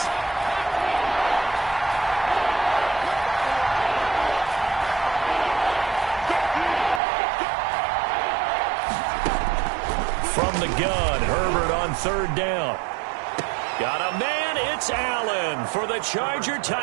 From the gun, Herbert on 3rd down. Got a man, it's Allen for the Charger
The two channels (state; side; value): drops out; left; at 7.0 s